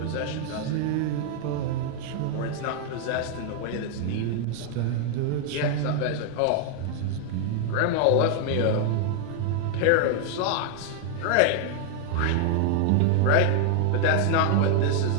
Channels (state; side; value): different; both; correlation 0.00